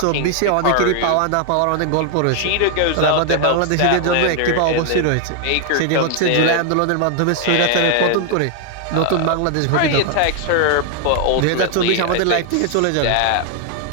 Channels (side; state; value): both; different; correlation 0.00